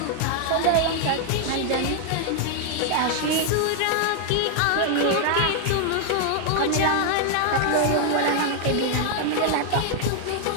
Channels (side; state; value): both; different; correlation 0.00